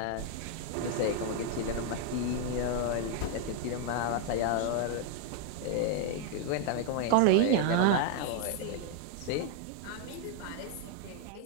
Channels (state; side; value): different; both; correlation 0.00